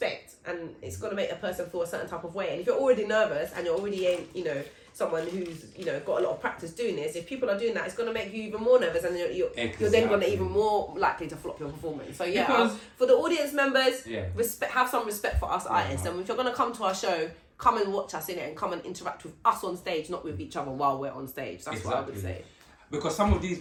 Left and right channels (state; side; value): identical; both; correlation 1.00